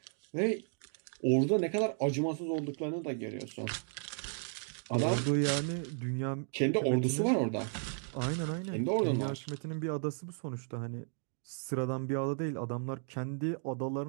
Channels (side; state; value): left; silent; 55 dB below the other